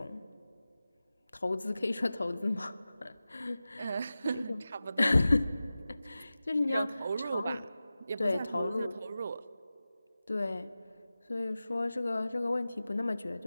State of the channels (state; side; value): inverted; both; correlation -0.95